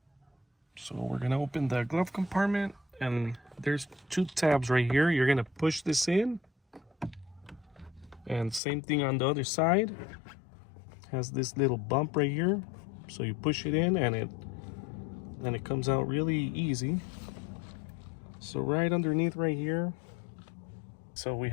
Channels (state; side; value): drops out; right; at 8.6 s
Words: So we're going to open the glove compartment, and there's two tabs right here. You're going to push this in. And same thing on the other side. Has this little bump right here. So you push it in and it comes out really easy. So right underneath right here. So we